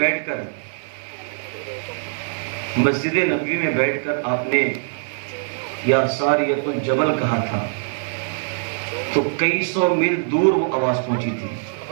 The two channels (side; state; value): left; silent; digital silence